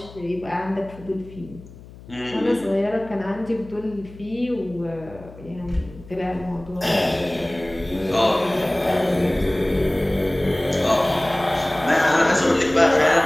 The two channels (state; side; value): noise; left; hum, 19 dB below the sound